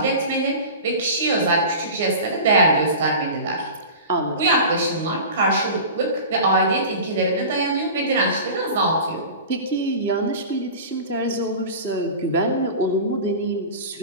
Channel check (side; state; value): both; inverted; correlation -0.34